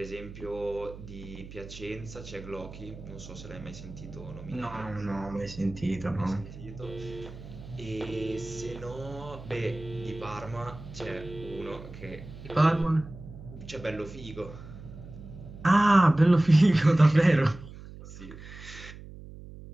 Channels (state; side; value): noise; right; hum, 14 dB below the sound